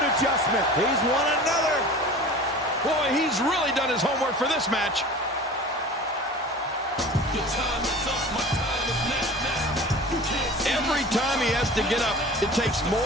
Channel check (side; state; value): both; normal; correlation 0.39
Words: adjustment. He's won another. Boy, he's really done his homework for this match. Every time he has to get up, it takes